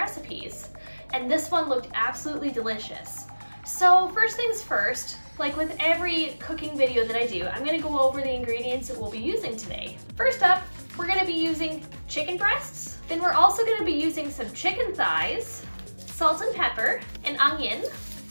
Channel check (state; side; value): inverted; both; correlation -1.00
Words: And this one looked absolutely delicious. So first things first, like with every cooking video that I do, I'm gonna go over the ingredients that we'll be using today. First up, we're gonna be using chicken breasts. Then we're also gonna be using some chicken thighs, salt and pepper, an onion.